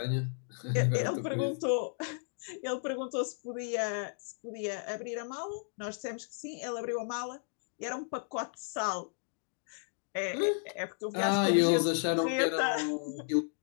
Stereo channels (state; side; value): silent; right; digital silence